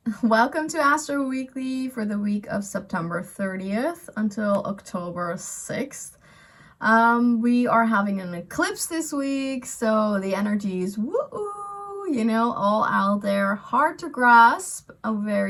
Welcome to Astro Weekly for the week of September 30th until October 6th. We are having an eclipse this week, so the energy is all out there, hard to grasp, a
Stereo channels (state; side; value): identical; both; correlation 1.00